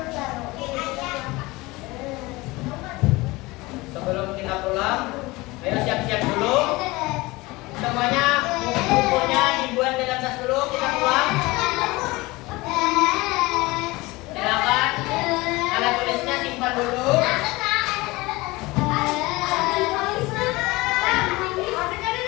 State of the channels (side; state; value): right; quieter; 21.8 dB